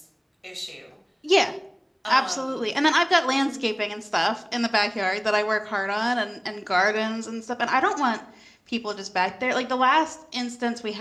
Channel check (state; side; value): identical; both; correlation 1.00